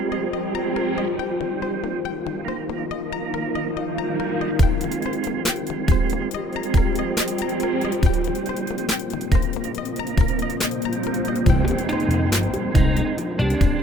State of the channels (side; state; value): both; normal; correlation 0.63